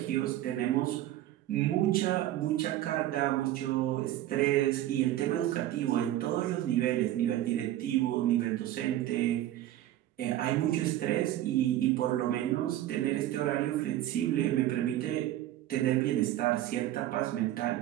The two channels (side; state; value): left; quieter; 13.6 dB